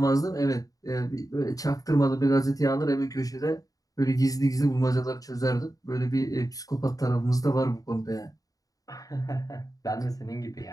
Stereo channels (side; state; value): right; late; 0.17 ms